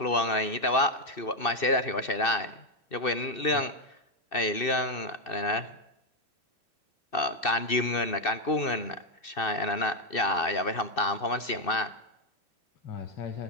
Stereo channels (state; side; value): late; right; 2.6 ms